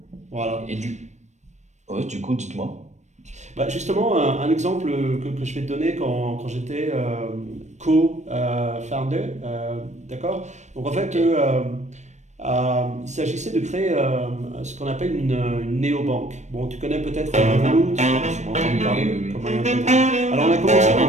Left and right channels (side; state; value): left; late; 0.34 ms